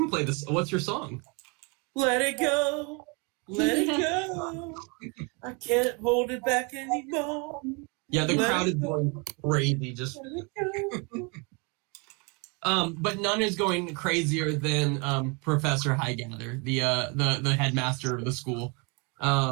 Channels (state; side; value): quieter; left; 31.7 dB